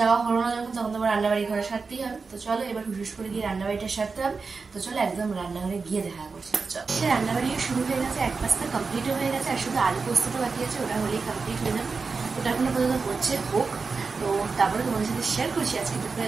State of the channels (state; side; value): quieter; left; 4.6 dB